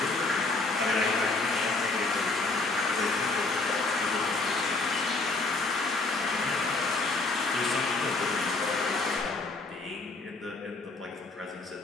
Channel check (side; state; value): right; quieter; 3.4 dB